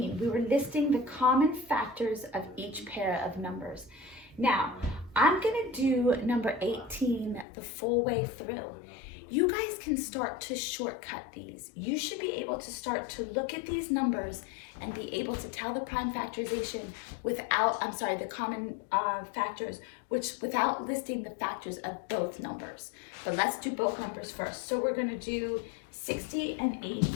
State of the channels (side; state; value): right; drops out; at 7.5 s